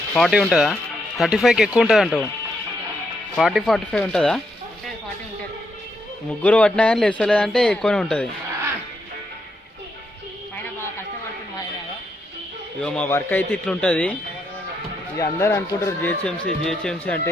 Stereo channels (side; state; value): both; normal; correlation 0.79